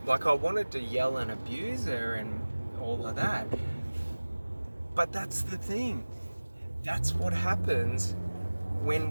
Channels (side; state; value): both; inverted; correlation -1.00